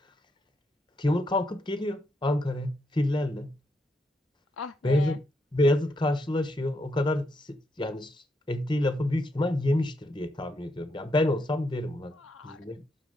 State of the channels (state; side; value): normal; both; correlation 0.80